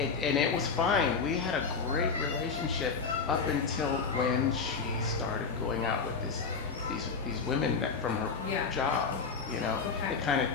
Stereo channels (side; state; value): right; quieter; 5.2 dB